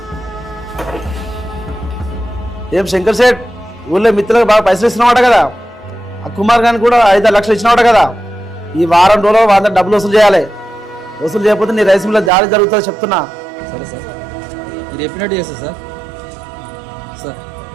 ఏం శంకర్ సేట్ ఊళ్ళో మిత్రులకు బాగా పైసలు ఇస్తున్నావాట కదా ఆ కుమార్ గారిని కూడా 5 లక్షలు ఇచ్చినవాట కదా ఈ వారం రోజులు వాళ్ళ డబ్బులు వసూలు చేయాలి వసూలు చేయకపోతే నీ రైస్ మిల్లో దాడి జరుగుతుందో చెప్తున్నా సరే సార్ మీరు చెప్పినట్టు చేస్తా సార్ సార్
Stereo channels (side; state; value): left; drops out; at 12.3 s